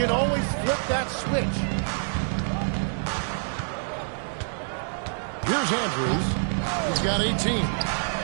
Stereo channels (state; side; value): silent; left; 61 dB below the other